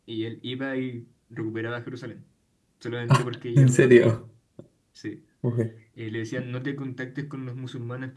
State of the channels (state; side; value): identical; both; correlation 1.00